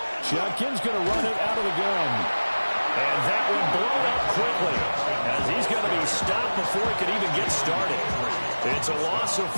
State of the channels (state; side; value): inverted; both; correlation -1.00